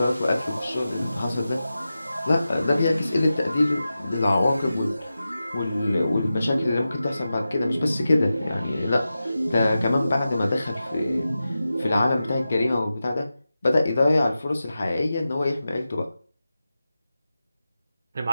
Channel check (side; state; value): both; inverted; correlation -0.93